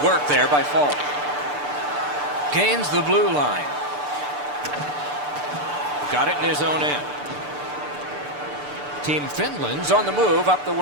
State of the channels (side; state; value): left; late; 6.8 ms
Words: work there by Falk. Gains the blue line. Got it in his own end. Team Finland's on the move up the